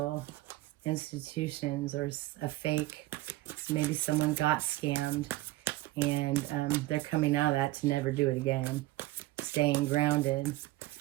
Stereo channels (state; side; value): quieter; left; 17.9 dB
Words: institutions or a fake. Maybe someone got scammed and they're coming out of that to never do it again. Staying grounded,